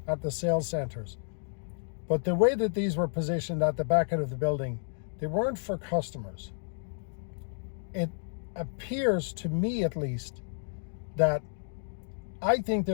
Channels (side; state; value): right; silent; digital silence